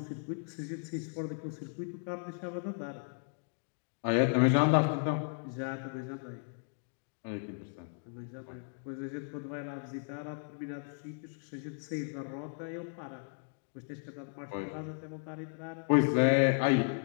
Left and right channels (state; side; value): silent; right; 54 dB below the other